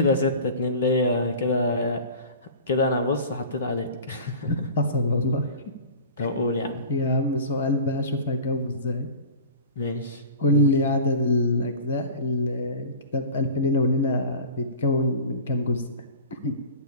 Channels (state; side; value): inverted; both; correlation -0.38